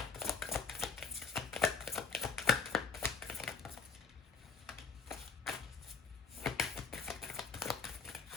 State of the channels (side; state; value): right; quieter; 5.1 dB